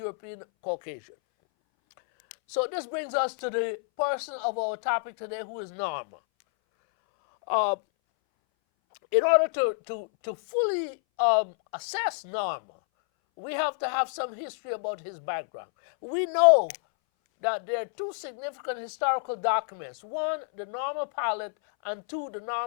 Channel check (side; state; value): right; silent; 59 dB below the other